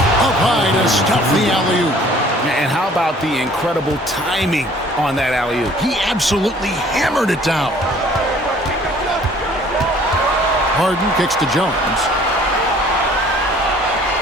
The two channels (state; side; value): normal; both; correlation 0.55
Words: high to stuff the alley-oop. And how about the incredible timing on that alley-oop? He absolutely hammered it down. Harden kicks to Jones.